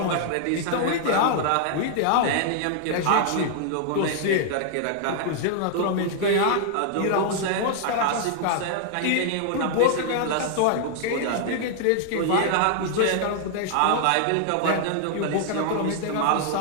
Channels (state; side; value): different; both; correlation -0.01